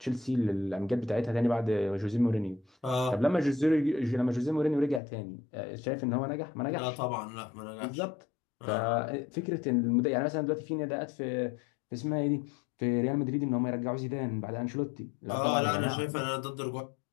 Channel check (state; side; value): drops out; right; at 5.0 s